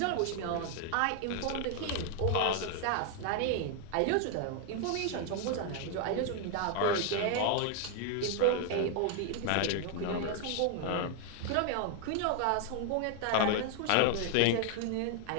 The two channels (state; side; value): different; both; correlation 0.00